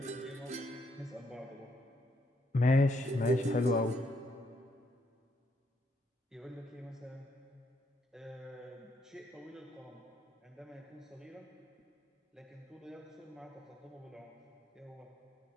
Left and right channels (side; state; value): both; normal; correlation 0.74